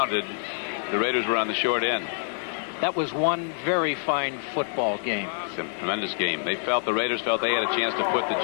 the Raiders were on the short end. That was one very fine football game. It's a tremendous game. The Raiders felt they had a chance to put the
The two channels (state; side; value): silent; right; digital silence